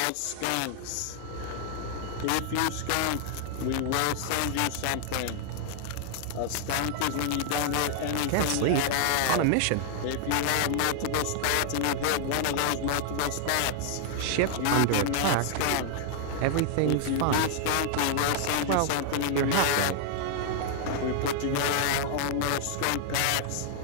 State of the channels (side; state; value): both; different; correlation 0.00